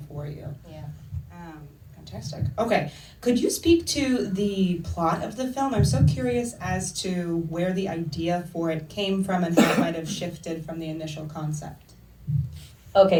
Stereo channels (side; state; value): both; identical; correlation 1.00